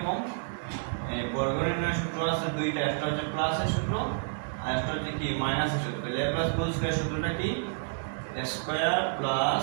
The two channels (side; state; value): left; silent; digital silence